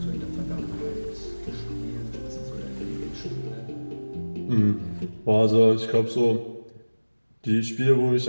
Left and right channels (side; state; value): both; inverted; correlation -1.00